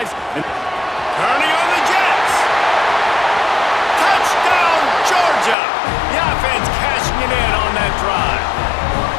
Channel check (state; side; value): drops out; right; at 5.6 s